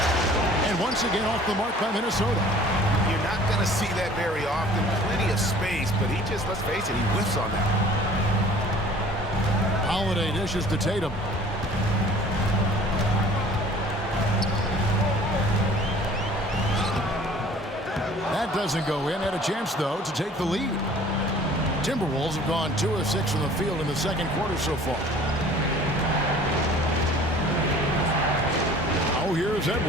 And once again off the mark by Minnesota. You're not going to see that very often. Plenty of space, but he just, let's face it, he whiffs on that. Holiday dishes to Tatum. That doesn't go in. Had a chance, though, to take the lead. Timberwolves have gone 2 of 6 from the field in the second quarter so far. Oh, here's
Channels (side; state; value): both; normal; correlation 0.49